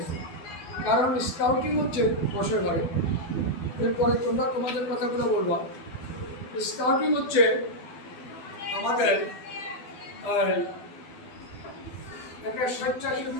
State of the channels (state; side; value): late; right; 12 ms